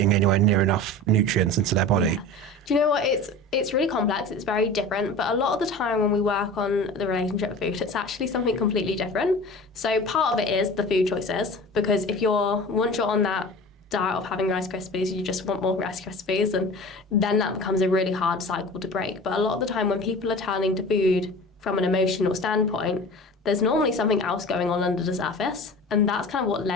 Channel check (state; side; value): normal; both; correlation 0.36